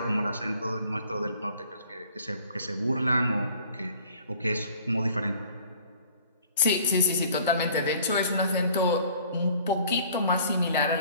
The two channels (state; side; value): inverted; both; correlation -0.53